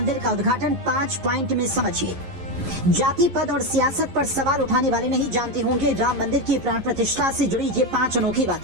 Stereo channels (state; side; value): late; left; 11 ms